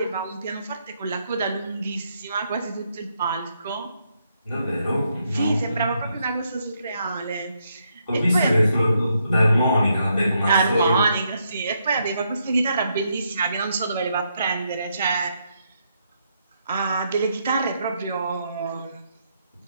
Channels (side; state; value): both; inverted; correlation -0.77